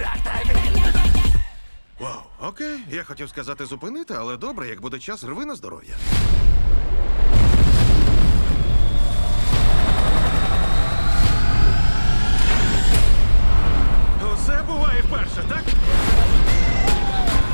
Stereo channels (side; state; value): both; inverted; correlation -1.00